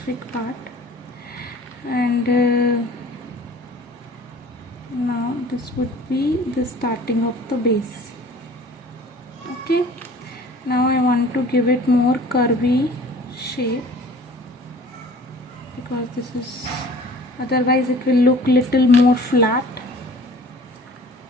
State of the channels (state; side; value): normal; both; correlation 0.47